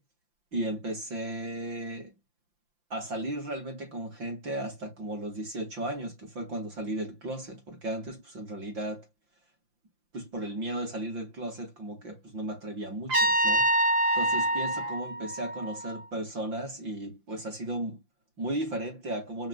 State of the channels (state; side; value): late; left; 5.8 ms